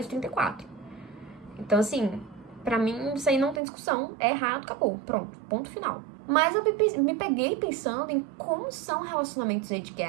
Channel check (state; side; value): drops out; left; at 3.6 s